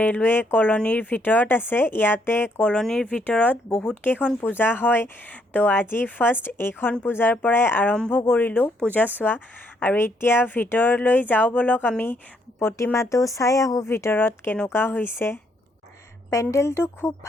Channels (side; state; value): both; normal; correlation 0.71